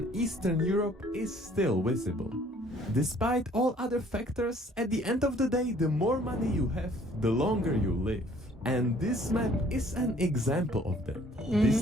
Eastern Europe is still visible. Despite all other factors, at the end of the day, the more money you have, the longer you live. And this map is an example of that. This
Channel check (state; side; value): normal; both; correlation 0.58